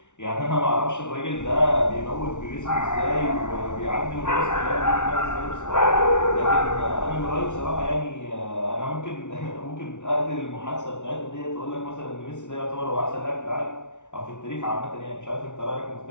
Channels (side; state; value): right; late; 0.85 ms